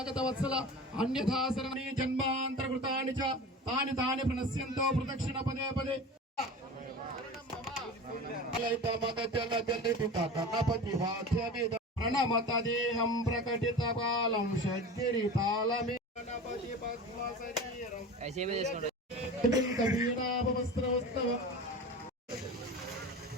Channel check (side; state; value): both; normal; correlation 0.33